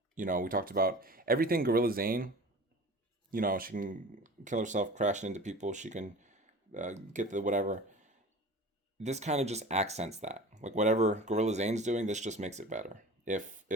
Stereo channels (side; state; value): both; normal; correlation 0.39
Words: you know, we talked about everything Gorilla Zane. You know, she can kill herself crashing into people. She can get the whatever. This kind of just accents that. Like whatever Gorilla Zane's doing, this just makes it better. If